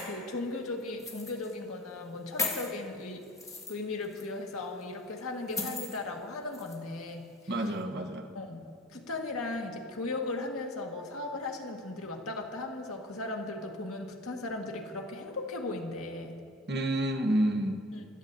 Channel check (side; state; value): both; normal; correlation 0.40